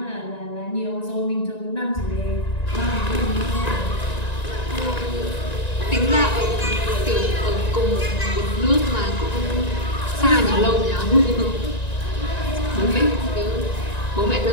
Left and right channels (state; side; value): late; right; 1.9 ms